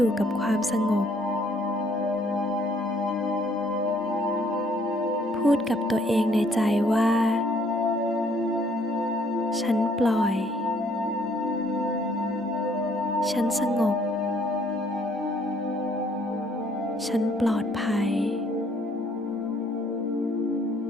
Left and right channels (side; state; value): both; normal; correlation 0.64